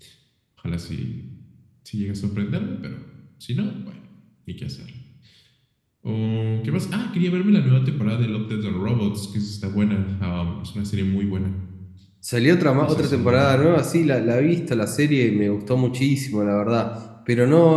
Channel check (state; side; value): identical; both; correlation 1.00